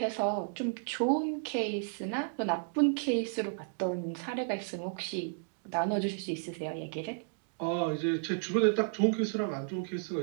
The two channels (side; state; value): left; silent; digital silence